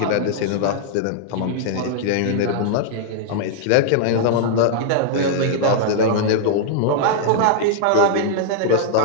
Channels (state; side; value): different; both; correlation -0.01